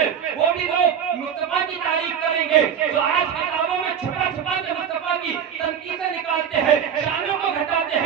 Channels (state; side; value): quieter; left; 8.3 dB